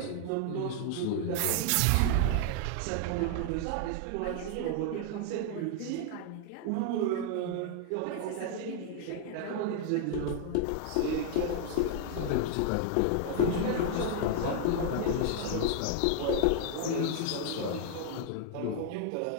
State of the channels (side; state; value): both; different; correlation 0.00